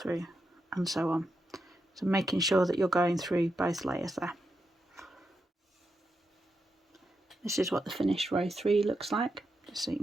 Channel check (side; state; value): both; normal; correlation 0.85